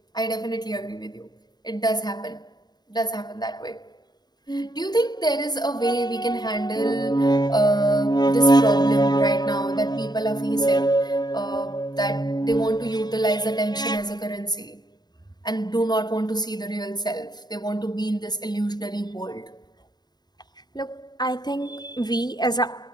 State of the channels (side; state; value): right; late; 0.20 ms